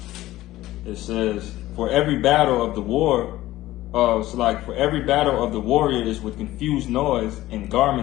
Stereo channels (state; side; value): quieter; right; 16.1 dB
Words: It says, "For every battle of the war, for every battle of the warrior is with confused noise and